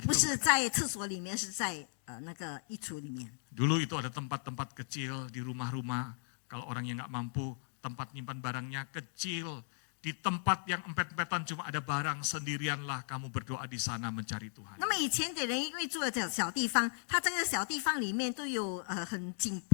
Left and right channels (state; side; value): silent; right; digital silence